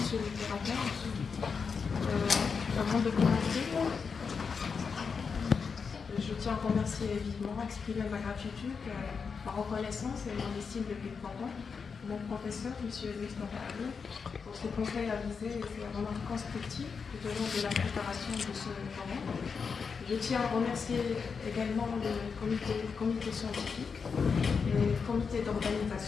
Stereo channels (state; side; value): quieter; right; 5.6 dB